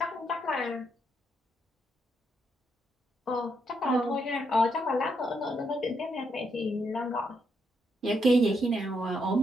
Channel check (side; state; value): both; normal; correlation 0.78